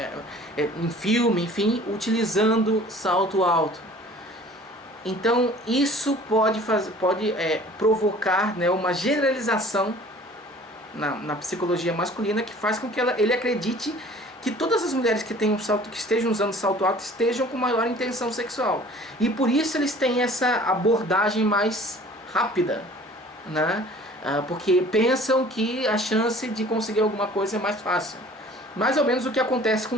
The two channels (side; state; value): both; normal; correlation 0.49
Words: em filme, enfim, utilizando salto alto. Então isso pode provocar, né, uma generalização na psicologia masculina, que faz com que ele acredite que todas as mulheres que estejam usando salto alto estejam com maior intenção sexual. E por isso eles têm essa abordagem mais rápida, né? Porque pensam que a chance de conseguir alguma coisa é mais fácil. Mais ou menos o que acontece com